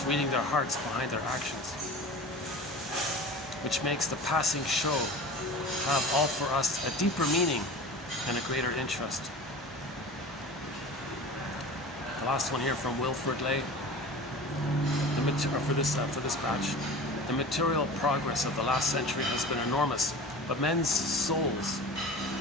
reading their hearts behind their actions, which makes the passing show have all for us a deeper meaning and a greater interest. The last one here from Wilfred Lay, for this batch. The material progress of the last century has been enormous, but men's souls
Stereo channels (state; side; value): normal; both; correlation 0.36